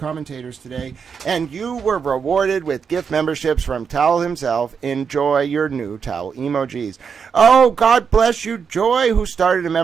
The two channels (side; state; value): left; quieter; 6.4 dB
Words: today. And you were rewarded with gift memberships from Towel himself. Enjoy your new towel emojis. Oh, God bless you, Joy, who started a